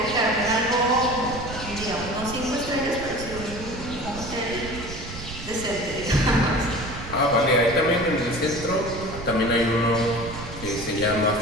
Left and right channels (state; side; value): noise; right; rumble, 11 dB below the sound